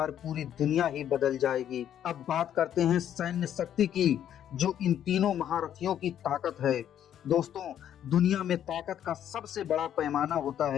पूरी दुनिया ही बदल जाएगी। अब बात करते हैं सैन्य शक्ति की, जो इन तीनों महारथियों की ताकत है। दोस्तों, दुनिया में ताकत का सबसे बड़ा पैमाना होता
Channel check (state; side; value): quieter; right; 10.3 dB